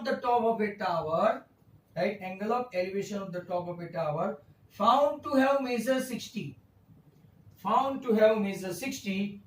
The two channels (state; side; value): identical; both; correlation 1.00